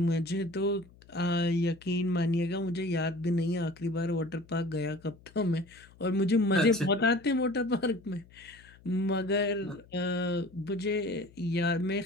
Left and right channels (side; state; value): left; noise; hum, 25 dB below the sound